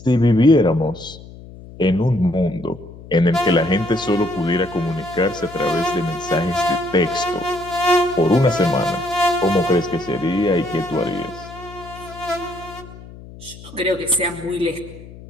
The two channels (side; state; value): left; noise; hum, 17 dB below the sound